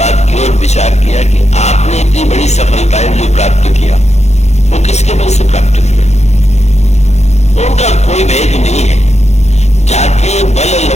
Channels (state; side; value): late; right; 0.32 ms